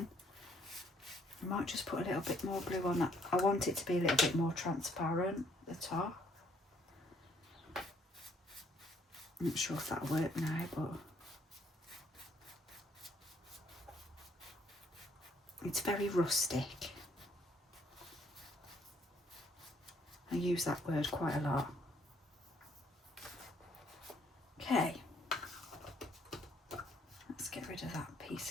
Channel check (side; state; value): both; normal; correlation 0.66